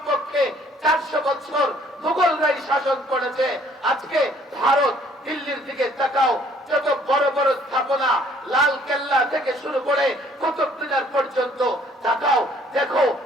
400 বছর মুঘলরাই শাসন করেছে। আজকে ভারত, দিল্লির দিকে তাকাও, যত বড় বড় স্থাপনা, লাল কেল্লা থেকে শুরু করে কুতুব মিনার পর্যন্ত তাকাও, দেখো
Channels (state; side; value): normal; both; correlation 0.60